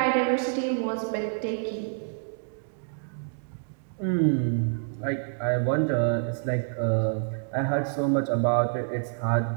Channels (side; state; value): left; silent; digital silence